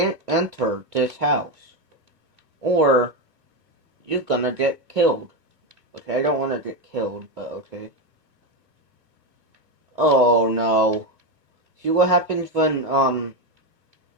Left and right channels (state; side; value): late; left; 2.4 ms